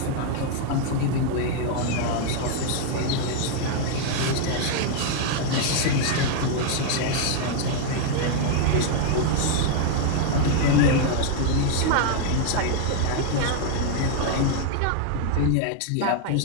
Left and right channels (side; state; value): both; different; correlation 0.00